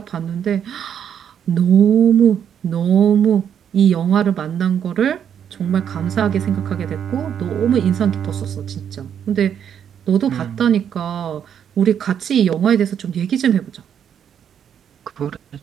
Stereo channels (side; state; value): left; quieter; 8.6 dB